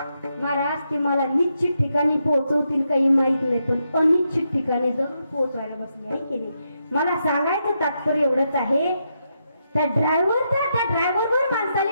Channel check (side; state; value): both; inverted; correlation -0.82